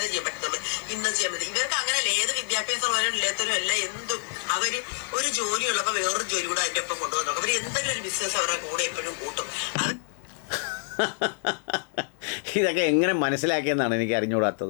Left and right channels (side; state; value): right; silent; digital silence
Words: ചെയ്യാൻ പറ്റത്തുള്ളൂ, ഇന്നത് ചെയ്യാൻ പറ്റും. ഇവർക്ക് അങ്ങനെയല്ല, ഏത് വിദ്യാഭ്യാസമുള്ളവരും ഇല്ലാത്തവരും അല്ല, എന്തും അവര് ഒരു ജോലി ഉള്ളപ്പോൾ വേറൊരു ജോലി കൂടെ അതിന്റെ ഒപ്പം കൊണ്ടുവന്നു. അവർ എന്തെങ്കിലും ഒരു ബിസിനസ് അവരുടെ കൂടെ എപ്പോഴും കൂട്ടും. ഇതൊക്കെ എങ്ങനെ മനസ്സിലാക്കിയെന്നാണ് എനിക്ക്